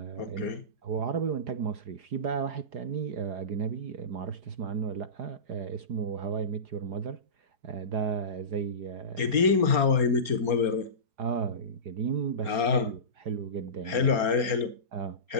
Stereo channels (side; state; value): left; late; 4.3 ms